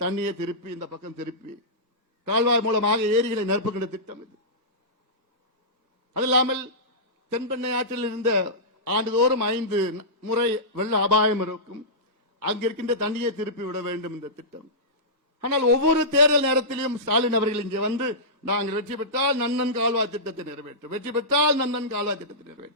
தண்ணியை திருப்பி இந்த பக்கம் திருப்பி கால்வாய் மூலமாக ஏரிகளை நிரப்புகின்ற திட்டம் இது. அது இல்லாமல் தென்பெண்ணை ஆற்றில் இருந்த ஆண்டுதோறும் 5 முறை வெள்ள அபாயம் இருக்கும். அங்கிருக்கின்ற தண்ணியை திருப்பி விட வேண்டும் இந்த திட்டம். ஆனால் ஒவ்வொரு தேர்தல் நேரத்திலும் ஸ்டாலின் அவர்கள் இங்கே வந்து, நாங்கள் வெற்றி பெற்றால் நந்தன் கால்வாய் திட்டத்தை நிறைவேற்றும், வெற்றி பெற்றால் நந்தன் கால்வாய் திட்டத்தை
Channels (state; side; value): normal; both; correlation -0.16